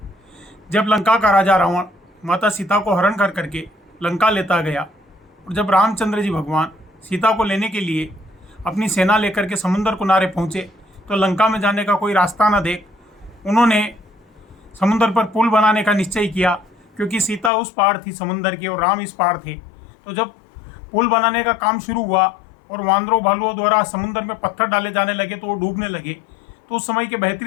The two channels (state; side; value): drops out; right; at 17.5 s